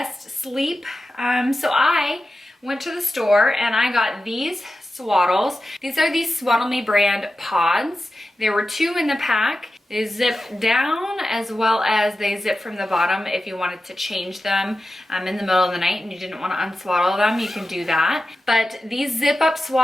sleep. So I went to the store and I got these swaddles. These are the Swaddle Me brand pods. There were 2 in the pack. They zip down as well as they zip from the bottom. If you wanted to change them in the middle of the night and you didn't want to unswaddle them, you can do that. But these zip up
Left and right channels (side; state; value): both; normal; correlation 0.93